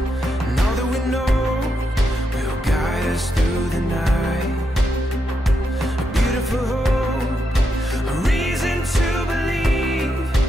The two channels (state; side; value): normal; both; correlation 0.83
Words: and all that we know will guide us through the night. A beautiful hope, a reason to believe